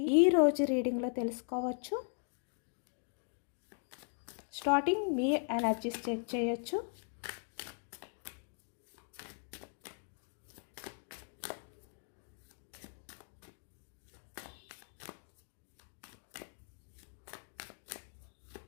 ఈరోజు రీడింగ్లో తెలుసుకోవచ్చు. స్టార్టింగ్ మీ ఎనర్జీస్ చెక్ చేయొచ్చు.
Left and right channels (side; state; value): right; silent; 52 dB below the other